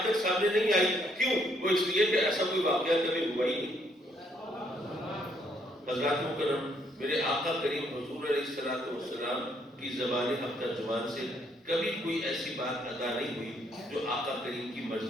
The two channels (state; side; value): normal; both; correlation 0.70